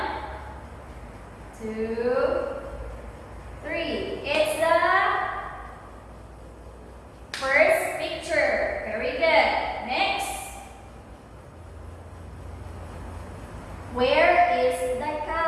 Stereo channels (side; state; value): both; identical; correlation 1.00